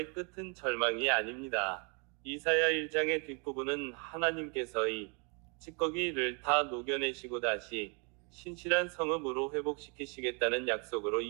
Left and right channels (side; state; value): left; quieter; 34.5 dB